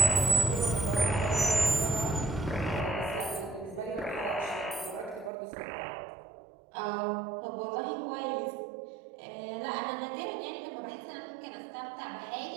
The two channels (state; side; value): drops out; left; at 5.3 s